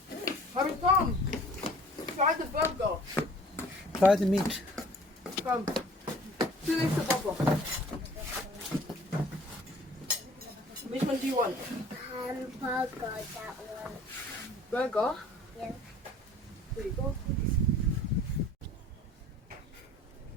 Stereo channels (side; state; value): both; normal; correlation 0.50